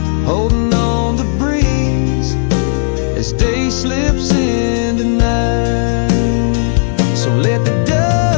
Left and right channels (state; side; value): silent; right; 67 dB below the other